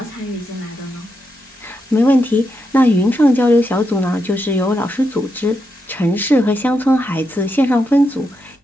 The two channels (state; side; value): normal; both; correlation 0.84